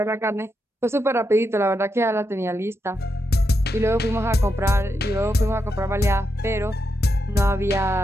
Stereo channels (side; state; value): both; normal; correlation 0.84